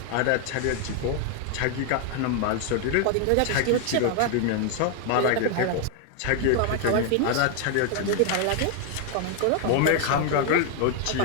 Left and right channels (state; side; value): different; both; correlation 0.00